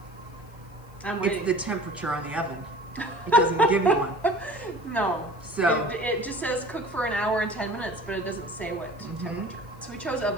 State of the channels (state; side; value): noise; left; hiss, 29 dB below the sound